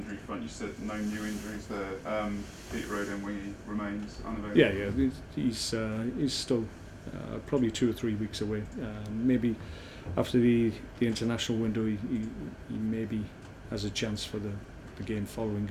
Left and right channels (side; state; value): both; identical; correlation 1.00